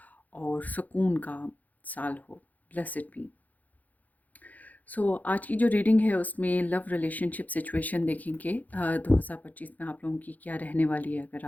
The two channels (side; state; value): right; late; 0.080 ms